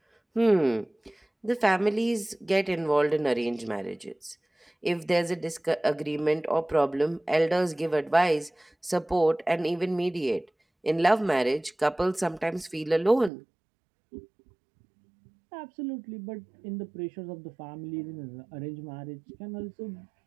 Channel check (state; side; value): drops out; left; at 13.3 s